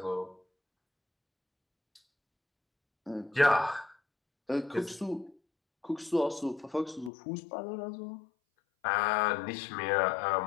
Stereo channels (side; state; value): right; drops out; at 7.1 s